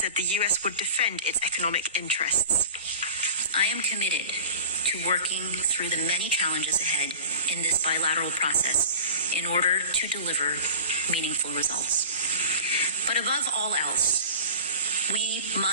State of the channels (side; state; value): both; inverted; correlation -0.39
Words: the U.S. would defend its economic interests. I am committed to to working through the many challenges ahead in this bilateral process in order to deliver meaningful results. But above all else, we